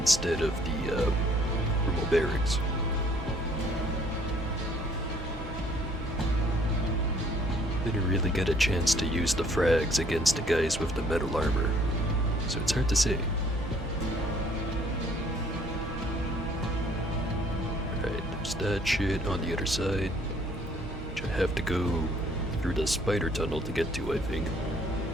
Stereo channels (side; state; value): both; normal; correlation 0.60